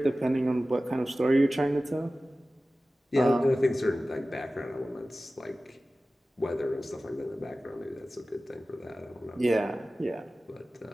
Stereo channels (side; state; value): both; normal; correlation 0.96